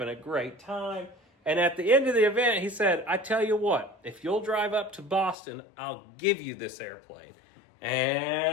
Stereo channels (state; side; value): drops out; right; at 5.4 s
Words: a great time. And at the end of the event, he said, I tell you what, if you'll drive up to Boston, I'll give you this airplane.